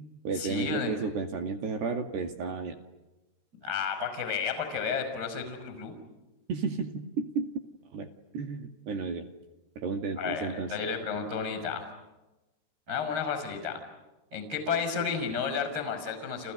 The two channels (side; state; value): left; late; 13 ms